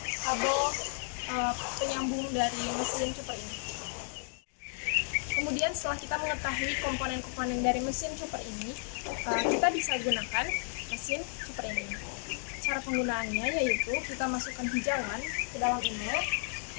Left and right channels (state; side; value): silent; right; 56 dB below the other